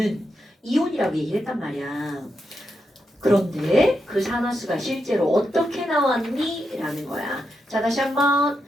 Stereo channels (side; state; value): both; normal; correlation 0.85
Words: 이온이라고 얘기를 했단 말이야. 그런데 그 산화수가 실제로 어떻게 나왔니? 라는 거야. 자 다시 한번